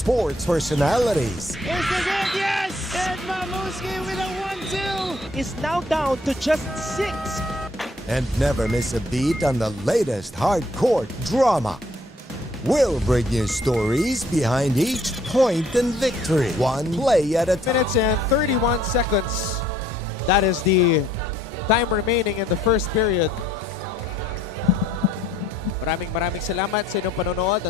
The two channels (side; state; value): both; normal; correlation 0.63